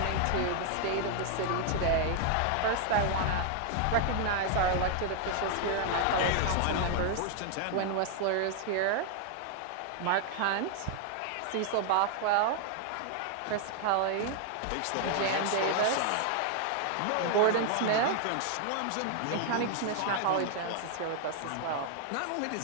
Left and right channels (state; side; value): different; both; correlation 0.00